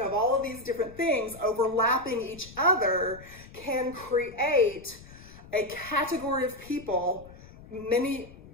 of all of these different things overlapping each other can create a category of people, many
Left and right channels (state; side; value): noise; left; rumble, 19 dB below the sound